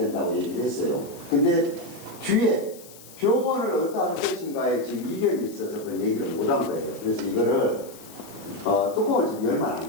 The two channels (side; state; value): left; noise; hiss, 19 dB below the sound